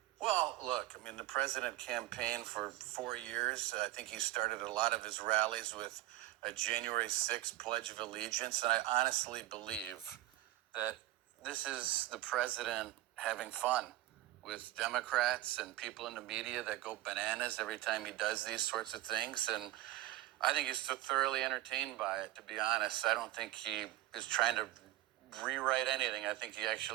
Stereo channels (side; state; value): left; quieter; 16.4 dB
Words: Well, look, I mean, the president campaigned for 4 years. I think he started a lot of his rallies with a January 6th Pledge of Allegiance. And I honestly believe that this is the president having fun with Democrats and people in the media that go bananas every time he does these sorts of things. And I think he's so thoroughly entertained by it, to be honest. I don't think he is trying to rewrite anything. I think he